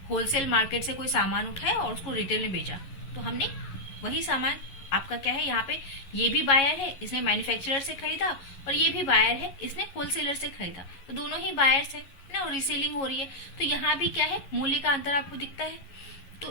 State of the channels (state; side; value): late; right; 11 ms